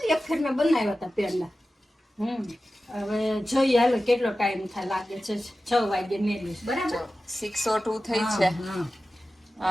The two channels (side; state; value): both; normal; correlation 0.94